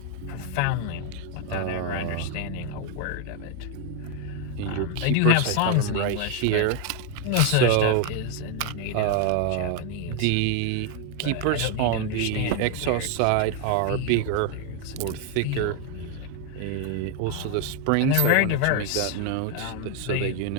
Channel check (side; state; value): both; different; correlation 0.01